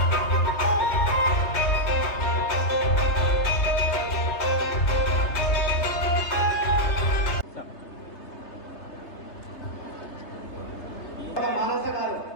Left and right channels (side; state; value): right; late; 3.3 ms